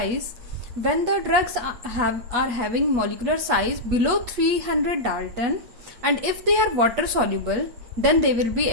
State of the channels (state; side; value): late; left; 8.3 ms